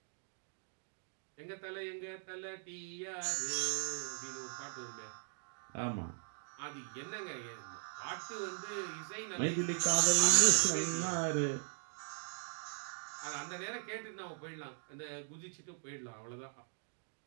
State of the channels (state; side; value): silent; left; digital silence